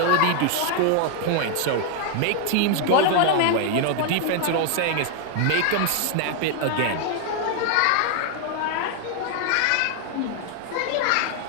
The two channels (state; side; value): different; both; correlation 0.00